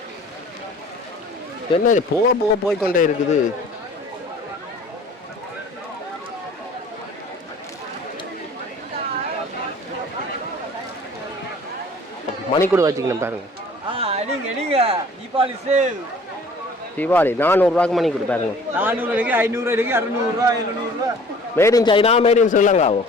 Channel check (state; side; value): normal; both; correlation 0.50